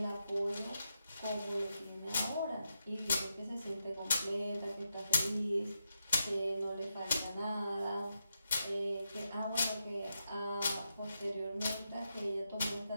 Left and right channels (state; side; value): inverted; both; correlation -0.86